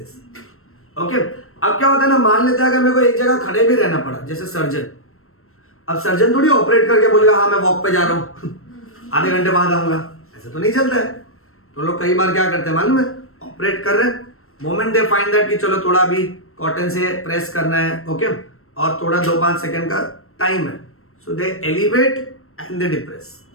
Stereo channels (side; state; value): right; late; 0.62 ms